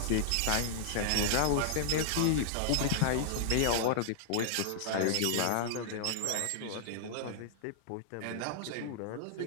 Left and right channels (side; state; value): both; different; correlation -0.01